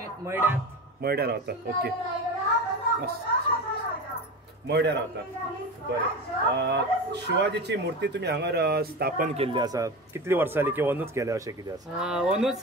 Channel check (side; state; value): both; normal; correlation 0.27